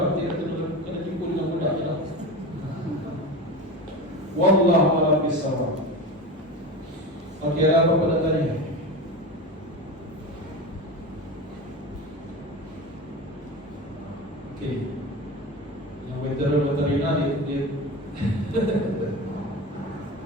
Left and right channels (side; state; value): both; normal; correlation 0.27